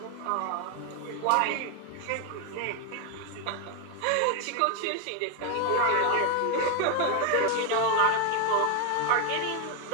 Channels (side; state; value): both; different; correlation 0.01